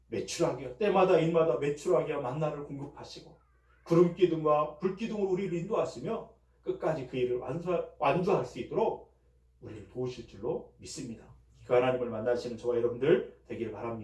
매출하게 때마다 일마다 매출하게 만나를 공급하시고 구름 기둥과 불 기둥으로 우리를 인도하시며 끝까지 그 일을 완주할 수 있도록 우리를 도우실 줄로 믿습니다. 그 하나님을 만나시는 저와 여러분들 되기를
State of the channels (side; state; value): both; identical; correlation 1.00